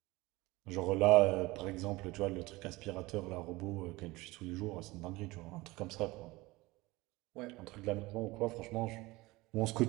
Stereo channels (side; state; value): left; quieter; 21.1 dB